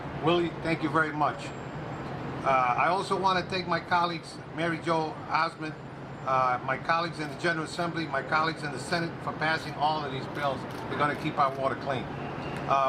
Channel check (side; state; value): both; identical; correlation 1.00